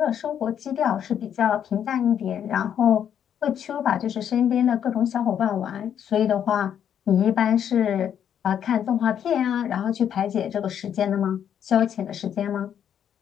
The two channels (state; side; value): quieter; right; 9.1 dB